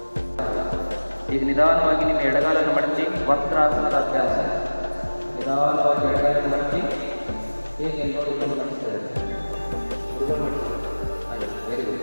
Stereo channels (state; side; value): inverted; both; correlation -1.00